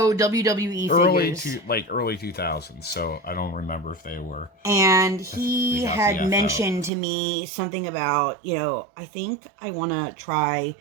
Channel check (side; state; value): left; drops out; at 6.9 s